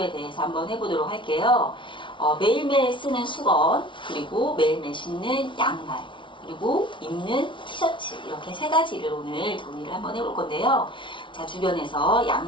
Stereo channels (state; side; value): late; right; 0.24 ms